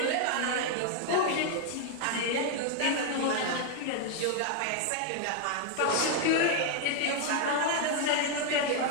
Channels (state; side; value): different; both; correlation 0.00